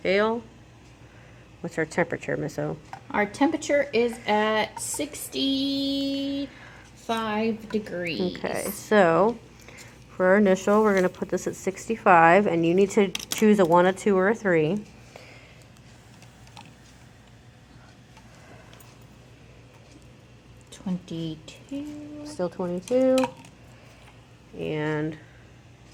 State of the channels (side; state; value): both; identical; correlation 1.00